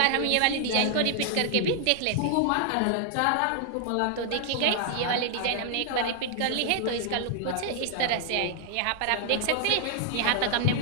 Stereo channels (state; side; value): different; both; correlation 0.00